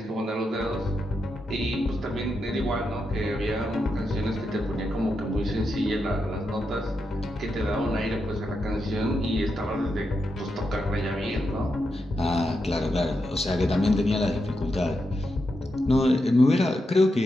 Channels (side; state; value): both; normal; correlation 0.85